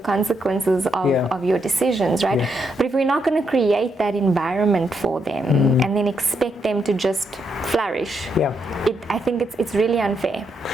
of your decisions, right? But if we're not going to create that environment for them and then expect them to just flourish, I think it's really unfair.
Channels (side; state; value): both; normal; correlation 0.79